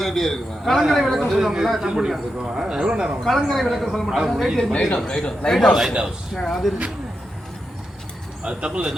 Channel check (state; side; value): normal; both; correlation 0.87